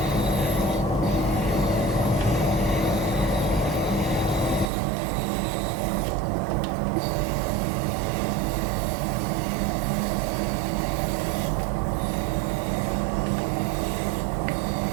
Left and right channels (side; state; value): left; drops out; at 4.7 s